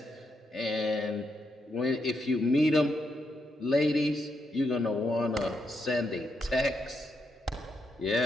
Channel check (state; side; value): normal; both; correlation 0.81